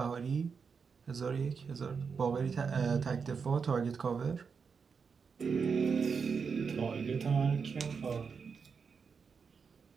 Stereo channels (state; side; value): quieter; left; 5.7 dB